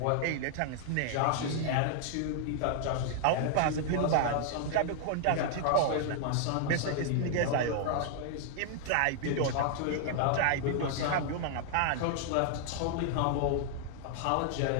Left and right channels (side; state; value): both; different; correlation 0.00